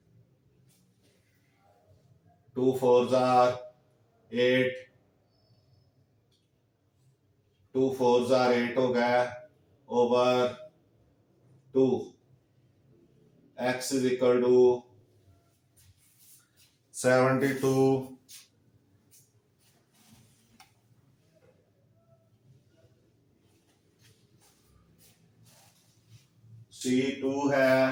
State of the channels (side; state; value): both; identical; correlation 1.00